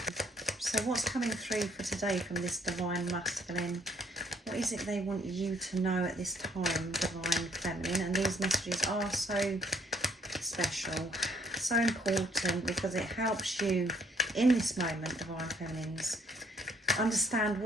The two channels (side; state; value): both; normal; correlation 0.64